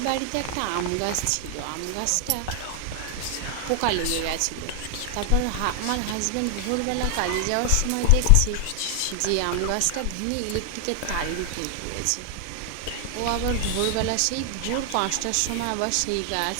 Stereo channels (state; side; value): different; both; correlation 0.00